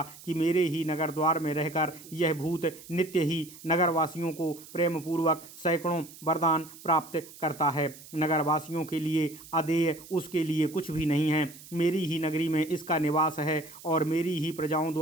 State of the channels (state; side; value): noise; right; hiss, 18 dB below the sound